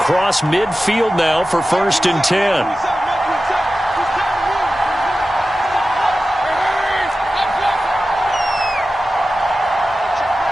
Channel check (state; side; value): normal; both; correlation 0.94